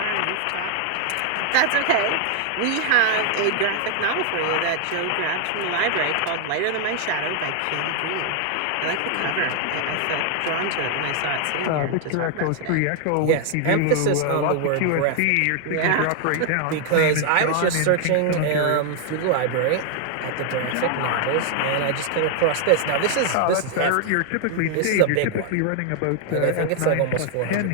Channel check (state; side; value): different; both; correlation 0.00